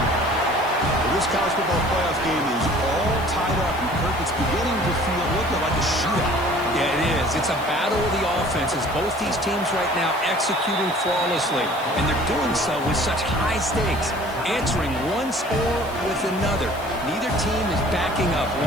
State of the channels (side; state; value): left; noise; hiss, 20 dB below the sound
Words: This college football playoff game is all tied up, and Kirk, it's beginning to feel a little bit like a shootout. Yeah, it is. It's a battle of the offenses. Both these teams right now executing flawlessly, and they're doing so with such high stakes, answering one score with another. Neither team is backing up